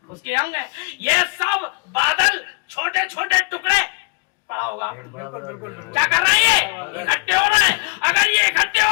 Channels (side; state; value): right; quieter; 30.9 dB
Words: उसके अंग है। ये सब बादल छोटे छोटे टुकड़े पड़ा होगा। बिल्कुल क्या कर रहे हैं? ये इकट्ठे हो रहे हैं। अगर ये